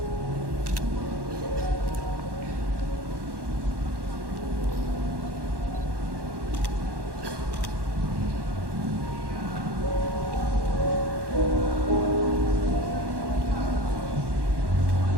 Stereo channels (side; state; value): left; late; 1.2 ms